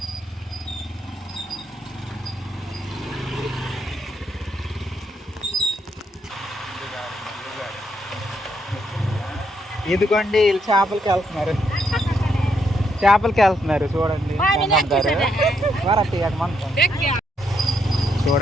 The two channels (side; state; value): both; normal; correlation 0.76